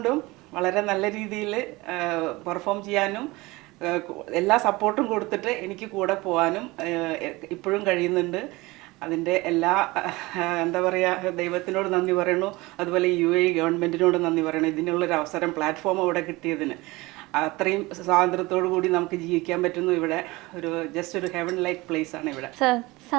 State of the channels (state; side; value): quieter; left; 21.8 dB